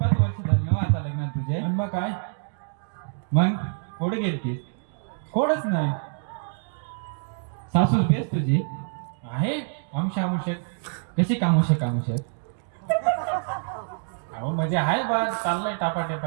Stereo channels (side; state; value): left; silent; 61 dB below the other